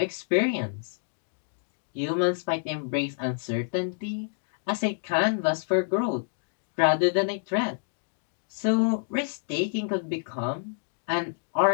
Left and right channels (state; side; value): silent; right; digital silence